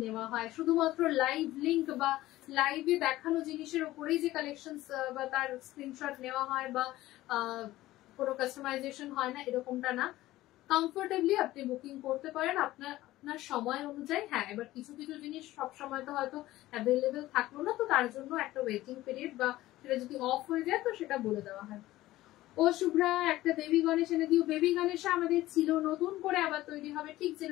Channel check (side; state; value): right; quieter; 16.3 dB